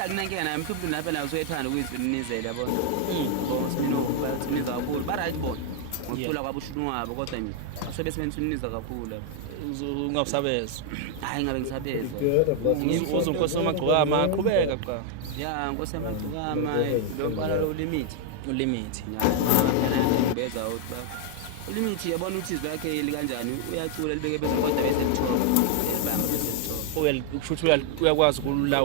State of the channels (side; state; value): both; different; correlation 0.00